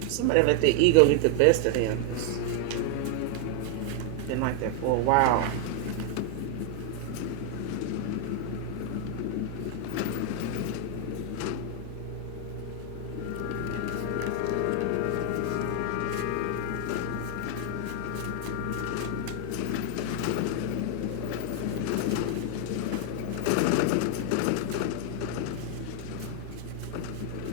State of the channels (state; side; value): different; both; correlation 0.00